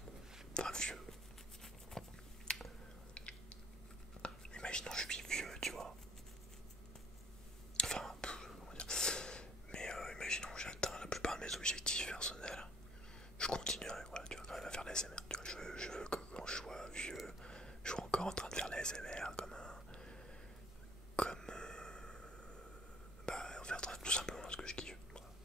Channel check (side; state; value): both; normal; correlation 0.59